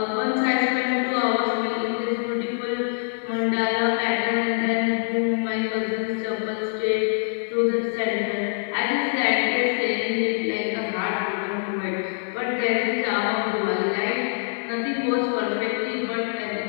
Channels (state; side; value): silent; right; digital silence